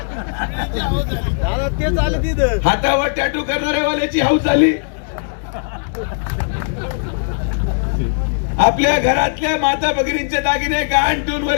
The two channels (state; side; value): silent; right; digital silence